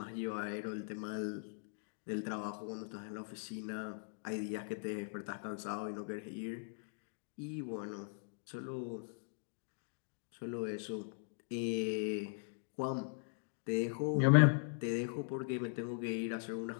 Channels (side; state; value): right; silent; digital silence